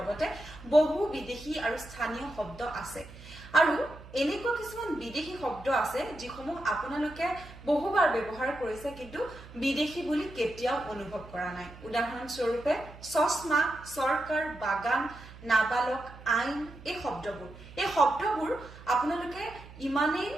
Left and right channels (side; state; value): right; noise; hum, 17 dB below the sound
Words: বহু বিদেশী আৰু স্থানীয় শব্দ আছে আৰু এনেকুৱা কিছুমান বিদেশী শব্দ আছে যিসমূহ আপোনালোকে বহুবাৰ ব্যৱহাৰ কৰিছে কিন্তু বিদেশী বুলি কেতিয়াও অনুভৱ কৰা নাই উদাহৰণস্বৰূপে চশমা সৰকাৰ বাগান নাবালক আইন এই শব্দবোৰ আপোনালোকে ইমানেই